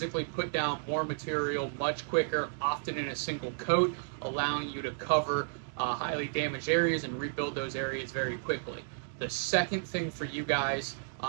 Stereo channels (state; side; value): silent; left; digital silence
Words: put down more material much quicker, often in a single coat, allowing you to cover highly damaged areas and rebuild those areas very quickly. The second thing for you guys,